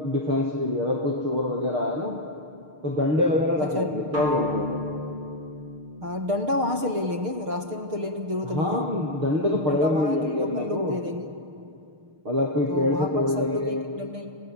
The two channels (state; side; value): late; left; 6.5 ms